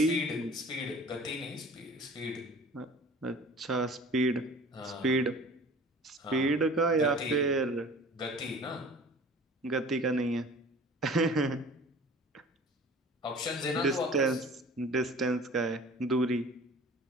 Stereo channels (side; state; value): both; normal; correlation 0.44